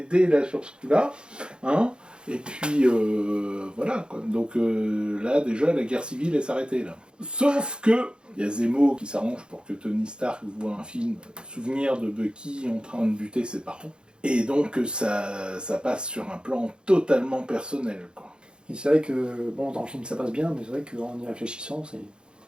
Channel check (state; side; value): late; left; 0.051 ms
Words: là sur ce coup-là, hein ?» Et puis, voilà, quoi. Donc là, déjà, la guerre civile est s'arrêtée, là. Sauf que, il y a Zemo qui s'arrange pour que Tony Stark voit un film, souvenir de Bucky en train de buter ses parents. Et donc, ça passe sur un plan totalement personnel, quoi. Et c'est vrai que, bon, dans le film ça passe bien, mais c'est vrai qu'en y réfléchissant, c'est